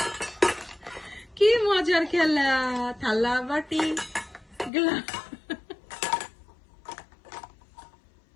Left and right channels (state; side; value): drops out; right; at 4.7 s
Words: কি মজার খেলা, থালা বাটি গ্লাস,